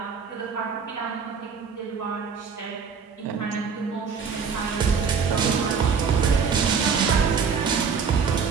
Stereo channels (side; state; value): left; quieter; 6.0 dB